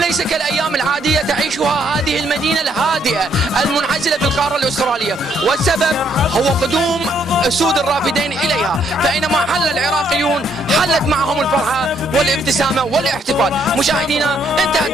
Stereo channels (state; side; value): normal; both; correlation 0.70